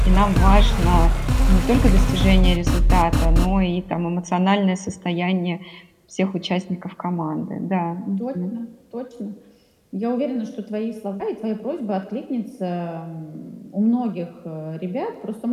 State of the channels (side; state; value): both; identical; correlation 1.00